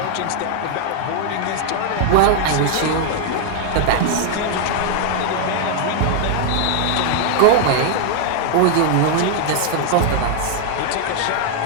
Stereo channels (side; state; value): both; different; correlation 0.00